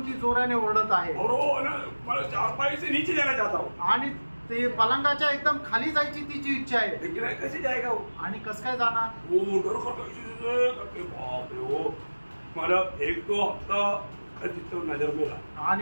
ती जोराने ओरडत आहे। और वो ना मतलब चारपाई से नीचे जाना चाहता हूँ आणि ते पलंगाच्या एकदम खाली जायची तिची इच्छा आहे। लेकिन कैसे जाएगा वो, आणि कस काय जाणार, वो डर करके बाप रे वो मतलब एक दो हफ्ता चित्र नजर में रहा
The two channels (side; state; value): both; inverted; correlation -1.00